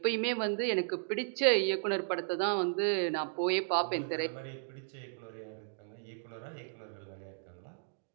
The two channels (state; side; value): silent; left; digital silence